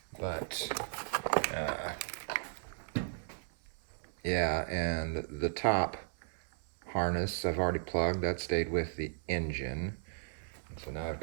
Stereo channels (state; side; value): silent; left; 54 dB below the other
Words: yeah, and the top harness I've already plugged. That stayed with the engine. So now I've